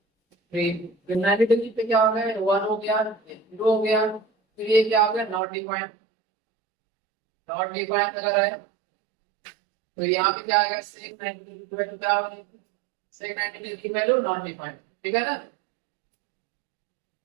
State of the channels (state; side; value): drops out; left; at 5.4 s